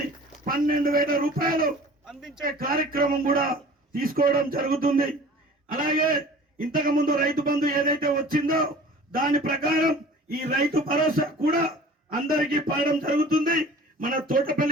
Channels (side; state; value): both; normal; correlation 0.45